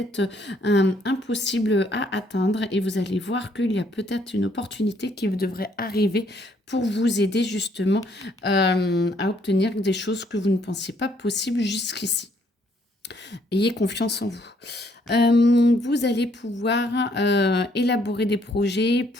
impossibles à atteindre et vous allez voir qu'il y a peut-être une opportunité qui devrait arriver pour vous aider justement, à obtenir des choses que vous ne pensiez pas possibles jusqu'ici. Ayez confiance en vous. Vous allez pouvoir élaborer des projets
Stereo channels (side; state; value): both; normal; correlation 0.67